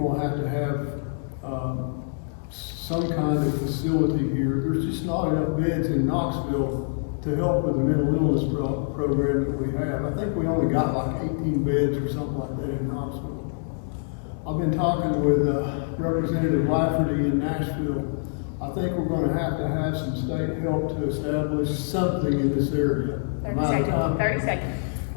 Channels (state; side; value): silent; right; digital silence